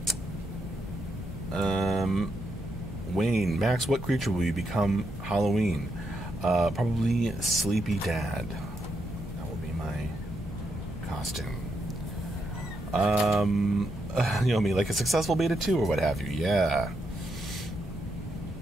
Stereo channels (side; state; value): both; normal; correlation 0.81